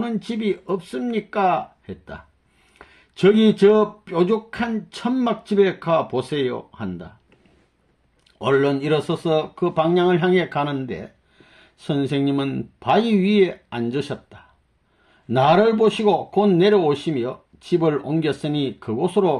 집이 없습니까? 했다. 저기 저 뾰족한 천막집에 가 보세요 한다. 얼른 일어서서 그 방향을 향해 가는데 선생님은 바위 위에 앉으셨다. 나를 보시고 곧 내려오시며 집을 옮겼으니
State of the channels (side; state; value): both; identical; correlation 1.00